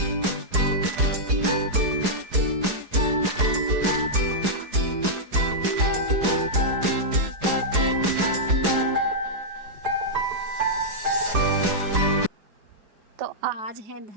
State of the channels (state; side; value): late; left; 4.8 ms